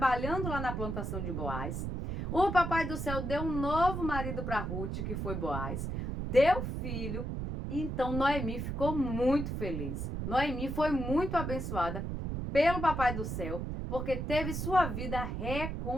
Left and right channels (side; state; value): right; noise; rumble, 3 dB below the sound